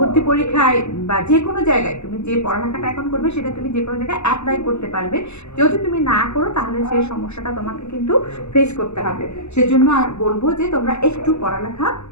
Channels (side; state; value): right; late; 0.81 ms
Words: পরীক্ষায় বা যে কোনো জায়গায় তুমি যে পড়ালেখাটা এখন করবে সেটা তুমি যে কোনো জায়গায় অ্যাপ্লাই করতে পারবে। যদি তুমি না করো তাহলে সেই সমস্যাটা তোমাকে কিন্তু ফেস করতে হবে। সেজন্য বলবো যে তোমরা একটু পড়ালেখা